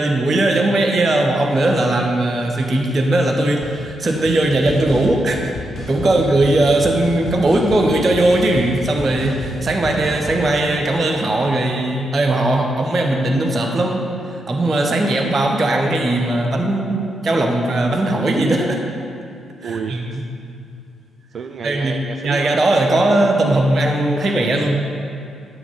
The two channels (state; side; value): normal; both; correlation 0.85